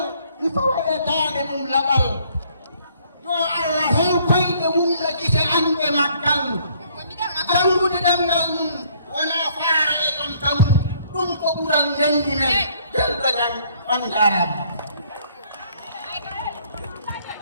mi fawa e dande mum laɓal yo Allah hew koyɗe mum no gite anɓe maggal jangude ɗemgal mum wona faara e ɗon taw ɗum ko ɓural ndendi men belɗo jam on jarama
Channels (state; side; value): inverted; both; correlation -0.63